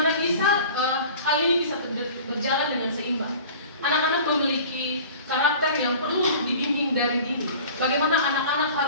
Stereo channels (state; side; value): inverted; both; correlation -0.42